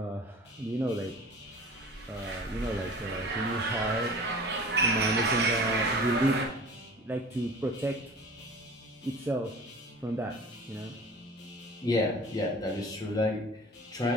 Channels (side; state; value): both; normal; correlation 0.41